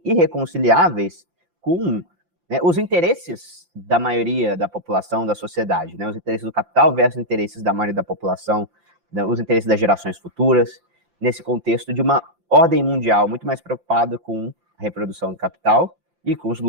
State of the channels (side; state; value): left; late; 5.8 ms